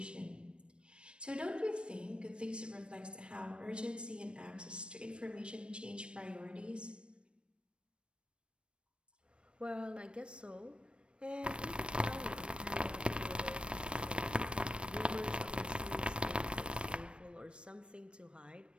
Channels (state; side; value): late; left; 0.057 ms